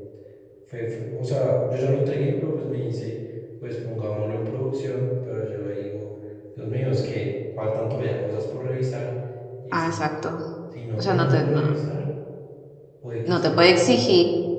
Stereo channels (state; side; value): identical; both; correlation 1.00